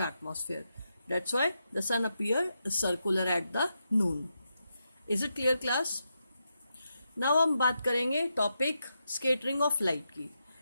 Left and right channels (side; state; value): both; inverted; correlation -0.85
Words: atmosphere. That's why the sun appear circular at the noon. Is it clear class? Now हम बात करेंगे टॉपिक स्कैटरिंग ऑफ लाइट की।